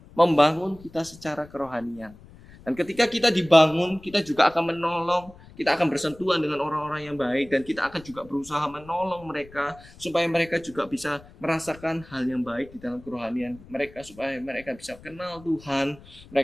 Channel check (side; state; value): left; noise; rumble, 21 dB below the sound